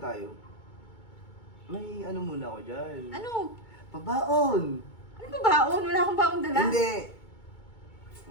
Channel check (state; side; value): late; right; 2.2 ms